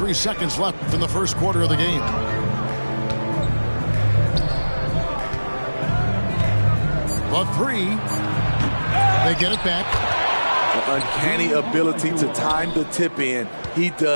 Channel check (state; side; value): inverted; both; correlation -1.00